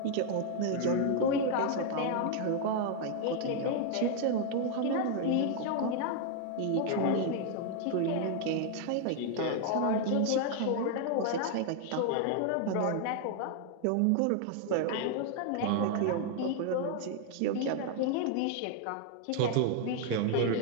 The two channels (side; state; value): both; different; correlation 0.00